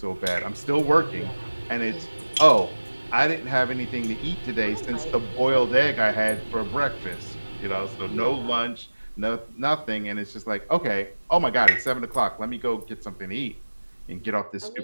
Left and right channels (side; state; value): both; inverted; correlation -1.00